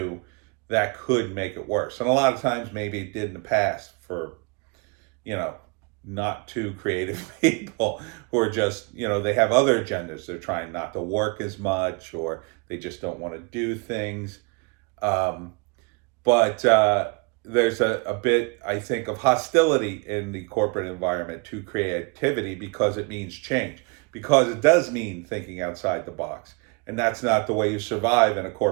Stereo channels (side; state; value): left; quieter; 32.1 dB